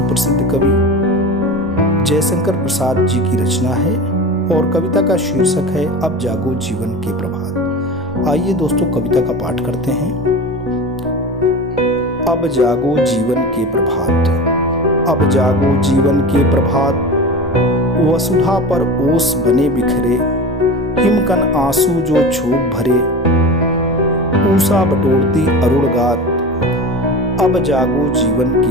कवि जयशंकर प्रसाद जी की रचना है और कविता का शीर्षक है अब जागो जीवन के प्रभात। आइए दोस्तों कविता का पाठ करते हैं। अब जागो जीवन के प्रभात, अब जागो जीवन के प्रभात, वसुधा पर ओस बने बिखरे, हिमकन आंसू जो छोप भरे, ऊषा बटोरती अरुण गात, अब जागो जीवन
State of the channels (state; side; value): normal; both; correlation 0.30